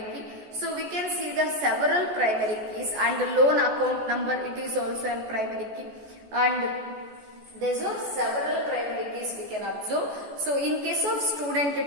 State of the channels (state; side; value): late; left; 14 ms